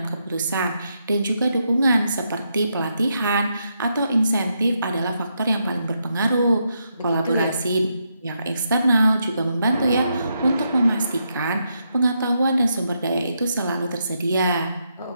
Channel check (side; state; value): both; inverted; correlation -0.81